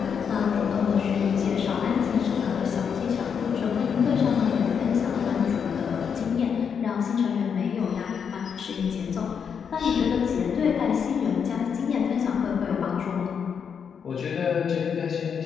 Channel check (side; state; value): right; quieter; 7.0 dB